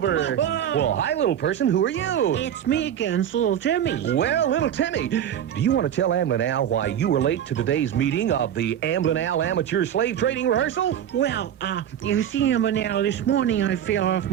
Well, hi, little person. Who are you? It's me again, Little Timmy. Well, Little Timmy, do you want to tell Amblin Al why you were late to today's meeting of the Amblin Al Amateur Slave Trading Rehearsal? Well, you see, Amblin Al, this morning I fell off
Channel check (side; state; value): left; quieter; 9.9 dB